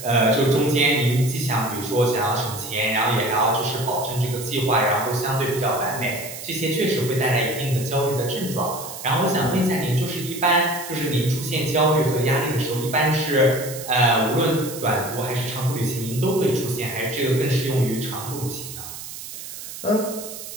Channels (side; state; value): right; noise; hiss, 11 dB below the sound